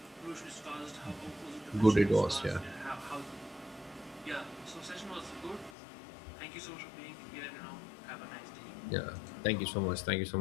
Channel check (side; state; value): right; drops out; at 5.7 s